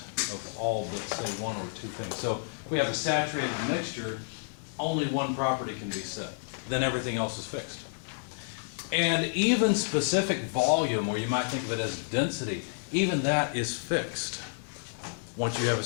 of all but, say, one or two things. So if we have a saturated mixture, only one property can be set. Then everything else is fixed. And even specific volume, or you might think of it as density, even that is fixed once you have a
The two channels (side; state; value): right; silent; 58 dB below the other